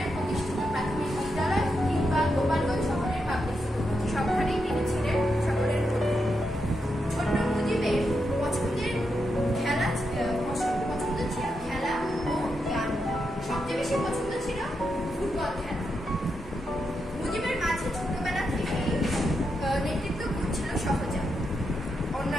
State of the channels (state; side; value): normal; both; correlation 0.84